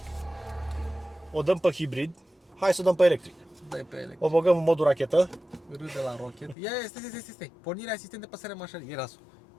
o dăm pe hibrid, hai să o dăm pe electric. Dai pe electric. O băgăm în modul rachetă. Râde la rocket. Ia, stai. Pornirea asistent de păsare mașinii. Ia lasul.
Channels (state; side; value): drops out; right; at 6.6 s